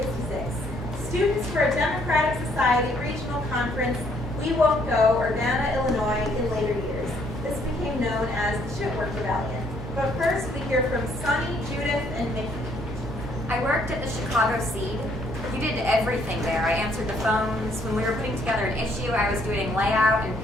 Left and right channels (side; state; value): both; normal; correlation 0.67